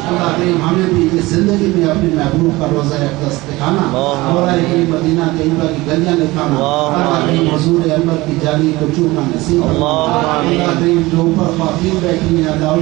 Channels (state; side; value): quieter; left; 20.5 dB